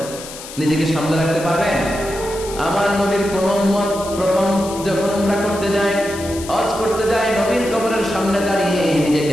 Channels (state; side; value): noise; left; hiss, 13 dB below the sound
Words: নিজেকে সামনে রাখতে পারবেন? আমার নবীর কোন উম্মত প্রথম যখন উমরা করতে যায়, হজ করতে যায়, নবীর কবরের সামনে দাঁড়িয়ে